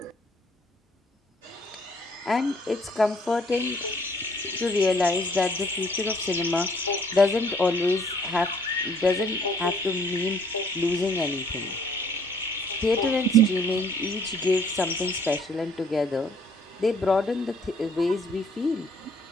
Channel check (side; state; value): both; normal; correlation 0.61